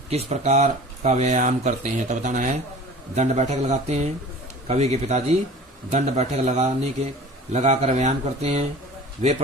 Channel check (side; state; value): both; normal; correlation 0.41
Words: प्रकार का व्यायाम करते हैं? तो बताना है दंड बैठक लगाते हैं। कवि के पिताजी दंड बैठक लगाकर व्यायाम करते हैं। वे